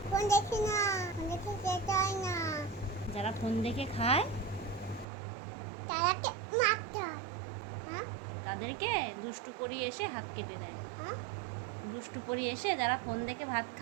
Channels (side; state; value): left; drops out; at 5.1 s